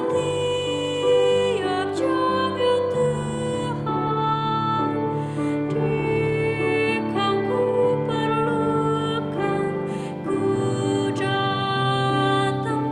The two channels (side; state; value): both; identical; correlation 1.00